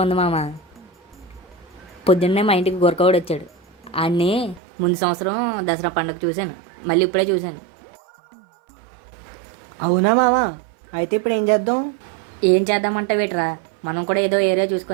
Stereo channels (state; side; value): drops out; left; at 4.6 s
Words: ఉంది మామ. పొద్దున్నే మా ఇంటికి గొరకవాడు వచ్చాడు. ఆడిని ముందు సంవత్సరం దసరా పండుగ చూశాను, మళ్ళీ ఇప్పుడే చూశాను. అవునా మావా, అయితే ఇప్పుడు ఏం చేద్దాం? ఏం చేద్దామంటే వేట్రా, మనం కూడా ఏదో ఏరియా